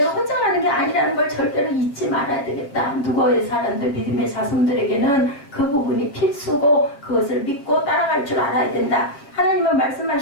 혼자 가는 게 아니라는 걸 절대로 잊지 말아야 되겠다. 누구의 사람들, 믿음의 자손들에게는 그 부분이 필수고 그것을 믿고 따라갈 줄 알아야 된다. 하나님은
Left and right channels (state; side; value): late; right; 7.2 ms